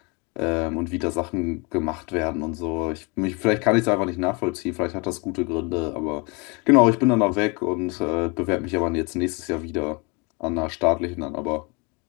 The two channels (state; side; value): quieter; right; 30.0 dB